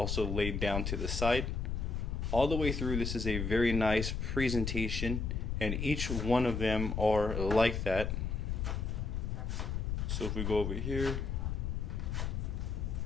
laid down to the side. All the way through, this is a very nice presentation, and each one of them are like that. So if we go over here,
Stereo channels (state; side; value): noise; left; rumble, 1 dB below the sound